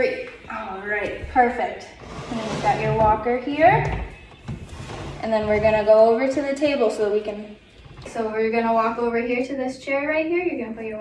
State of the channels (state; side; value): identical; both; correlation 1.00